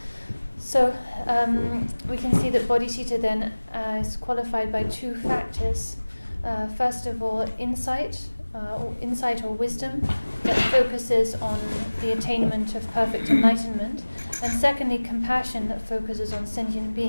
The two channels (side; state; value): both; inverted; correlation -1.00